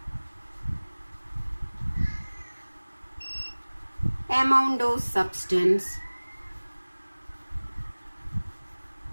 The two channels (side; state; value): both; inverted; correlation -1.00